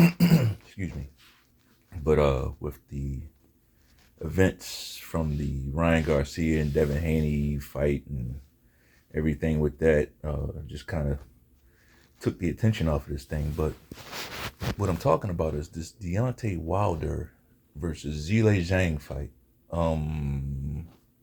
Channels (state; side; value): identical; both; correlation 1.00